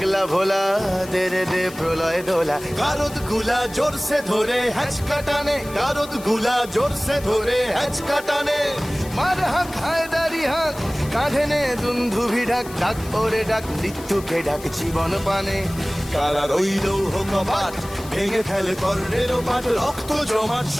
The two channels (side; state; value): left; noise; hiss, 17 dB below the sound